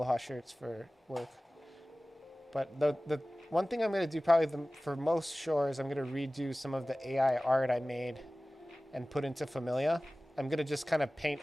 shirts for work. But the one thing I'm gonna do probably for most shores, I'm gonna redo some of the AI art I made and put into Familia. I'm gonna just kind of paint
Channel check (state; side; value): normal; both; correlation 0.97